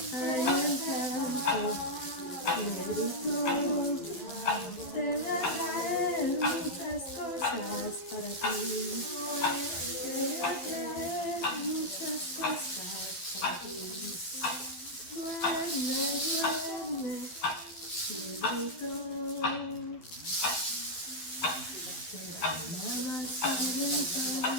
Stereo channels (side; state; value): right; late; 11 ms